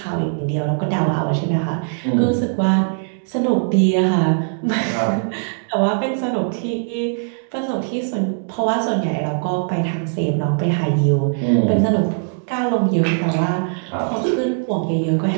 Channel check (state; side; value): silent; left; digital silence